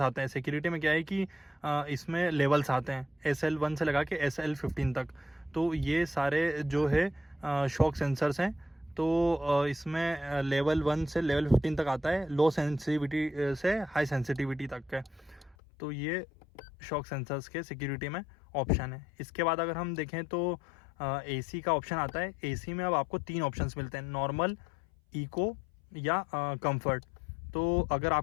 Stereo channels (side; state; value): right; drops out; at 15.6 s